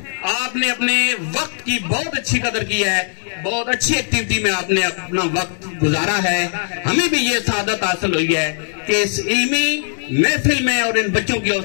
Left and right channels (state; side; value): silent; right; 67 dB below the other